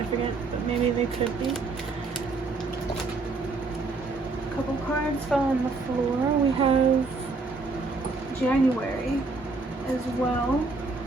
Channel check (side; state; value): left; quieter; 3.8 dB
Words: but maybe they could be. A couple cards fell on the floor. We have January as well.